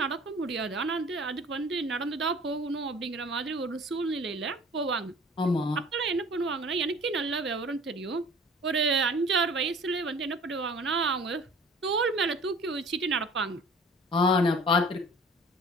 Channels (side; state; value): both; normal; correlation 0.46